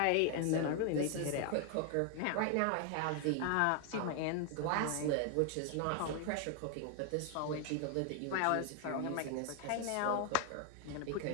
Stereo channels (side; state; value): both; different; correlation 0.00